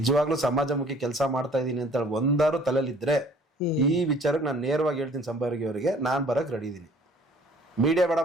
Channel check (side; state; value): both; normal; correlation 0.54